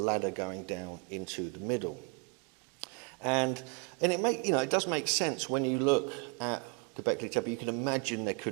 going down into the middle. And it does make sense when you look at Göbekli Tepe. You can imagine there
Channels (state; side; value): quieter; left; 33.1 dB